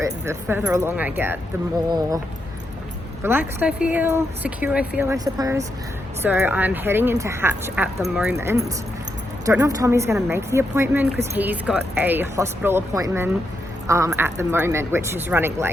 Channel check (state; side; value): normal; both; correlation 0.83